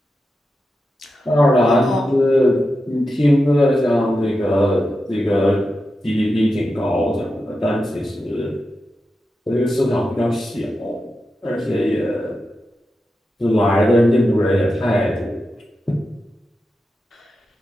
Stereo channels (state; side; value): normal; both; correlation 0.89